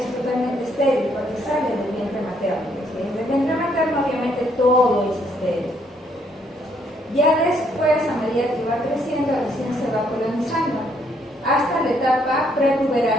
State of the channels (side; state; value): both; normal; correlation 0.70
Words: totalmente estéril porque sale del vientre materno. ¿Sí? Del vientre materno obviamente todo es estéril. Ya después, a medida que va creciendo, recién se va colonizando hasta la etapa